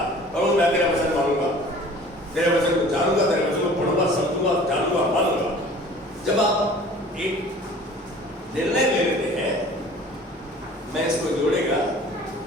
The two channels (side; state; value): both; normal; correlation 0.47